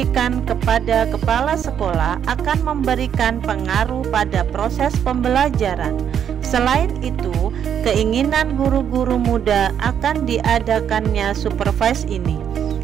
kepada kepala sekolah akan memberikan pengaruh pada proses pembelajaran. Selain itu, keinginan guru-guru muda akan diadakannya supervise ini.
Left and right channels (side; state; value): left; quieter; 8.7 dB